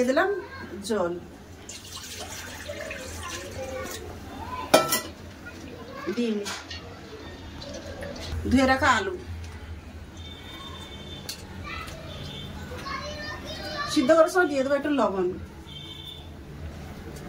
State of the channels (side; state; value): both; identical; correlation 1.00